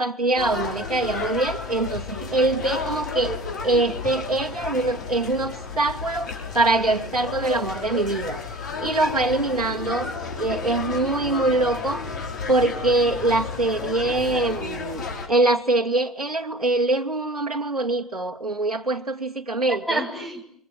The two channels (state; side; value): normal; both; correlation 0.42